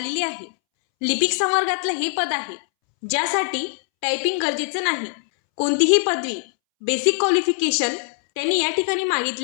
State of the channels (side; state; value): right; silent; 64 dB below the other